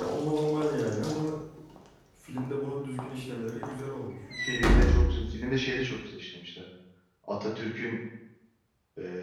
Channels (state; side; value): identical; both; correlation 1.00